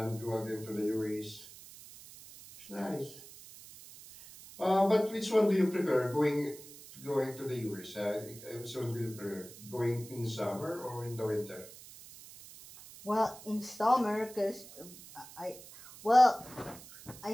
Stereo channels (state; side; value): noise; right; hiss, 17 dB below the sound